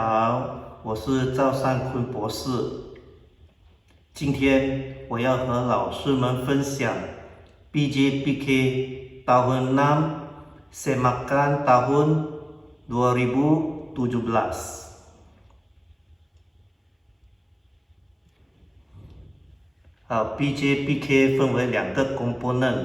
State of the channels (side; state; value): both; identical; correlation 1.00